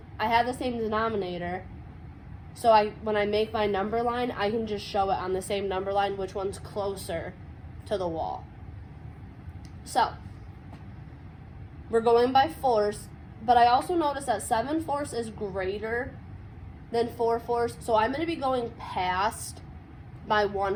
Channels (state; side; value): identical; both; correlation 1.00